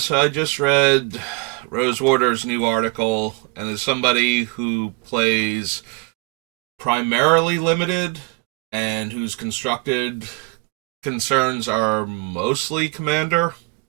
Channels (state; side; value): quieter; left; 29.7 dB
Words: I just read Rosewater's new article, and as somebody who plays primarily limited and whose constructed concerns are mostly commander,